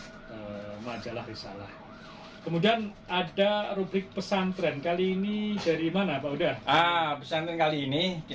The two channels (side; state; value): both; identical; correlation 1.00